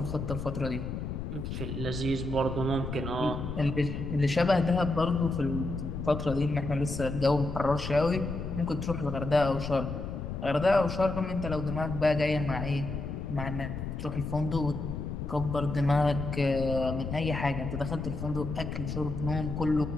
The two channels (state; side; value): noise; left; rumble, 5 dB below the sound